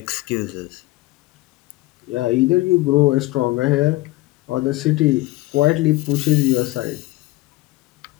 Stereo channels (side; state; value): right; quieter; 19.2 dB